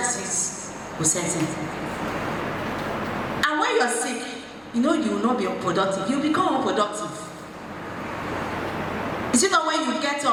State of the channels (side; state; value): both; identical; correlation 1.00